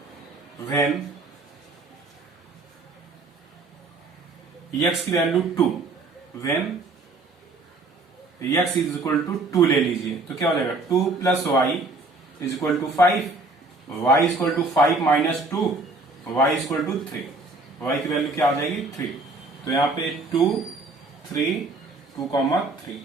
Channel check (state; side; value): quieter; left; 3.2 dB